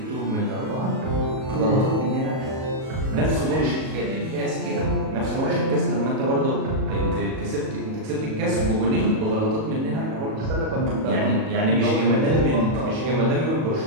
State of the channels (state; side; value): late; left; 37 ms